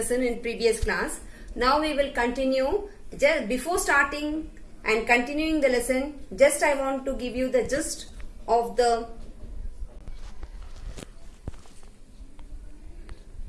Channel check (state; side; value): identical; both; correlation 1.00